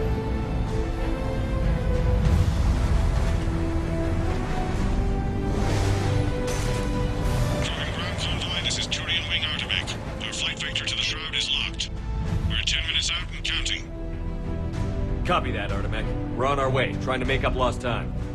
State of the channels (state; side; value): identical; both; correlation 1.00